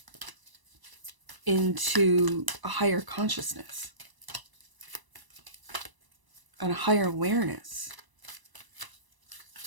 into a higher consciousness and a higher awareness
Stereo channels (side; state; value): left; late; 1.0 ms